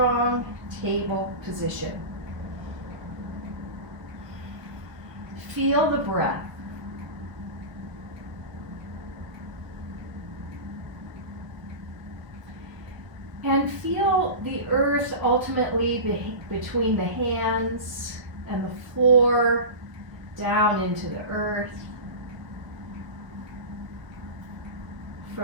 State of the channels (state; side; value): late; left; 1.0 ms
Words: table position. Feel the breath. And feel the earth ultimately between the hands and the floor, down into the earth.